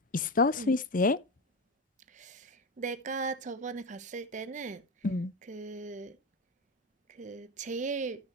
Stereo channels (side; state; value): both; normal; correlation 0.19